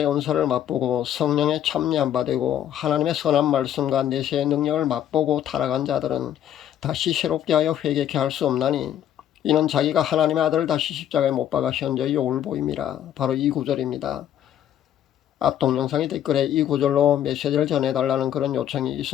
은사를 맛보고 성령의 참여한 바 되고 하나님의 선한 말씀과 내세의 능력을 맛보고 타락한 자들은 다시 새롭게 하여 회개케 할 수 없나니 이는 자기가 하나님의 아들을 다시 십자가에 못 박아 현저히 욕을 보임이라. 바로 이 구절입니다. 앞 동영상의 댓글에 이 구절로 메시지를 전해달라는 그런 요청이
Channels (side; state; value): right; quieter; 10.8 dB